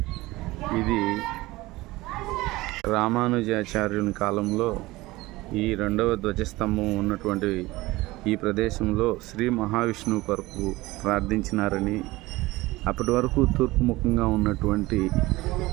రామానుజాచార్యుని కాలంలో ఈ రెండవ ధ్వజస్తంభం ఉన్నటువంటి ఈ ప్రదేశంలో శ్రీ మహావిష్ణువు కొరకు ప్రార్థించినారని, అప్పటి వరకు తూర్పు ముఖంగా ఉన్నటువంటి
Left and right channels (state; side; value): quieter; left; 19.6 dB